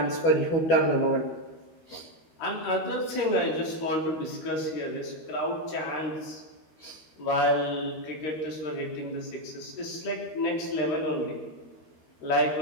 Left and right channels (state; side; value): late; right; 13 ms